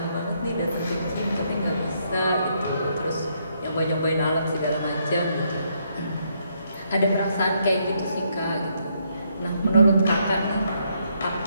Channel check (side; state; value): both; inverted; correlation -0.74